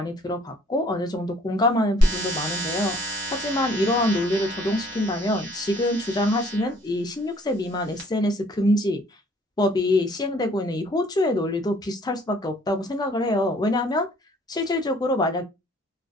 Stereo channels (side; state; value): both; normal; correlation 0.58